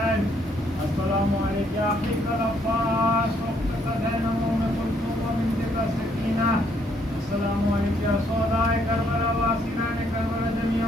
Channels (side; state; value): both; normal; correlation 0.69